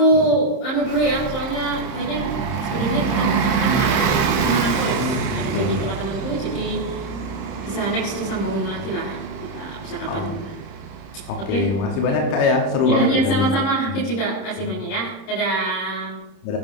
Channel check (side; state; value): right; late; 30 ms